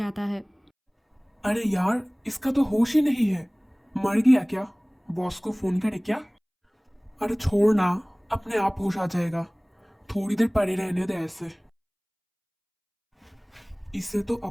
है। अरे यार, इसका तो होश ही नहीं है। मर गया क्या? बॉस को फोन करे क्या? अरे छोड़ ना, अपने आप होश आ जाएगा। थोड़ी देर पड़े रहने दे ऐसे। इसे तो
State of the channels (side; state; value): both; identical; correlation 1.00